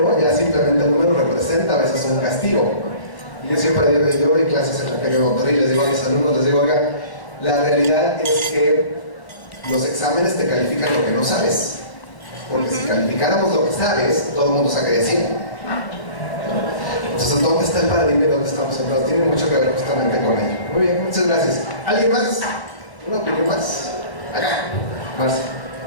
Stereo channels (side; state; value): right; late; 1.0 ms